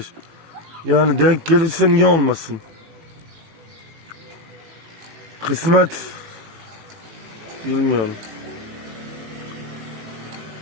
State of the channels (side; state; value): left; late; 18 ms